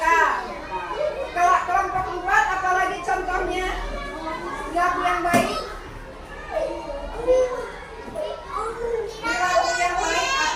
Kalau kelompok 4, apalagi contohnya? Perilaku yang baik. Perilaku yang baik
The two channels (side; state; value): both; identical; correlation 1.00